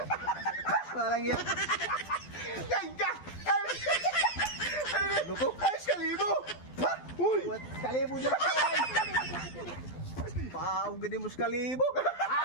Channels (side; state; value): right; late; 12 ms